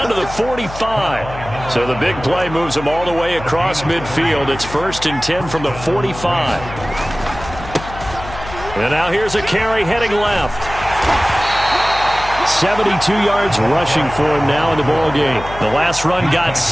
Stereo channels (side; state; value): left; noise; hum, 12 dB below the sound